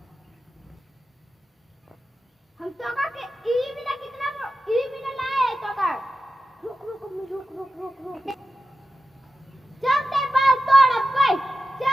हम तो का के ई बिना लाए तो का रुक चल ते बाल तोड़ अब भाई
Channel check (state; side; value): normal; both; correlation 0.92